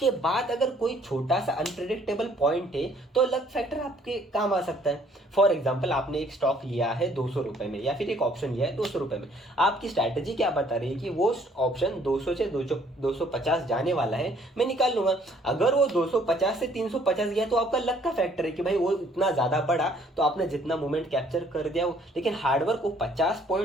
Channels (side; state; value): both; normal; correlation 0.61